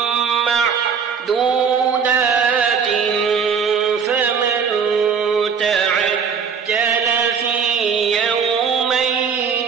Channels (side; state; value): left; quieter; 6.4 dB